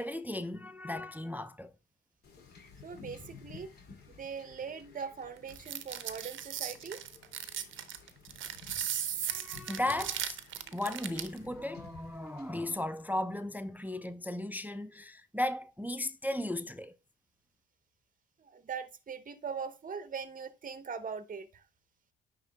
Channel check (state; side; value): normal; both; correlation 0.55